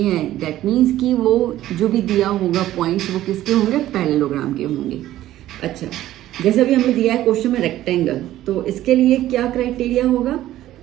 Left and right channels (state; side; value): quieter; left; 13.9 dB